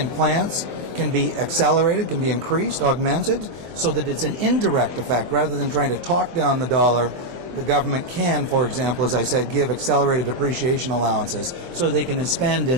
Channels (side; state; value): left; late; 23 ms